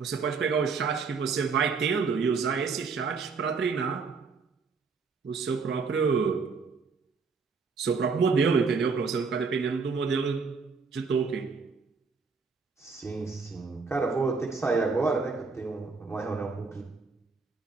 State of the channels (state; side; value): quieter; left; 4.9 dB